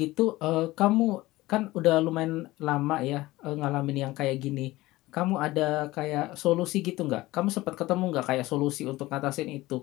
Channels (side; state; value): right; quieter; 18.6 dB